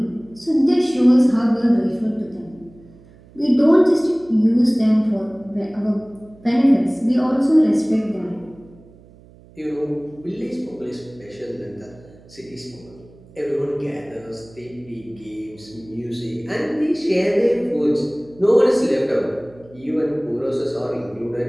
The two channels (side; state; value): right; noise; hum, 25 dB below the sound